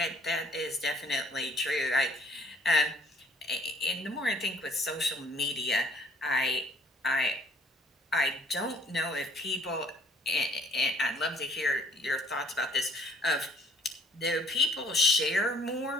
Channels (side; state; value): both; normal; correlation 0.58